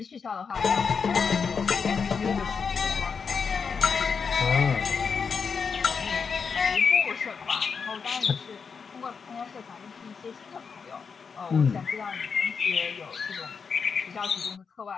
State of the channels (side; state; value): right; quieter; 5.8 dB